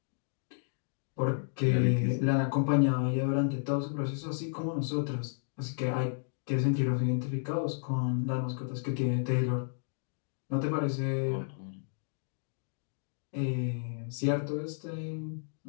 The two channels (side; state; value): right; silent; digital silence